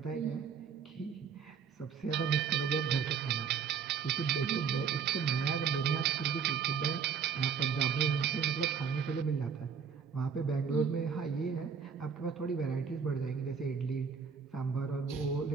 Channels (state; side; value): quieter; left; 6.6 dB